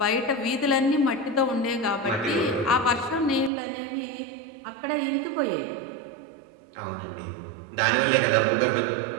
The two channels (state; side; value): drops out; left; at 3.5 s